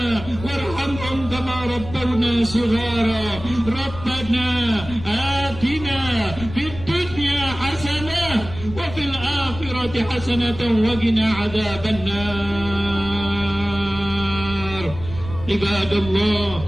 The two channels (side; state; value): left; noise; rumble, 12 dB below the sound